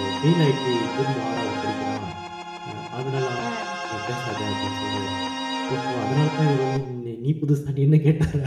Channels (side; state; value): both; identical; correlation 1.00